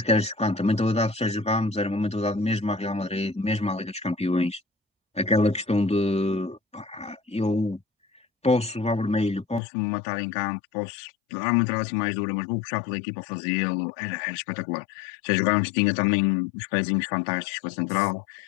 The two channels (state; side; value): drops out; right; at 9.6 s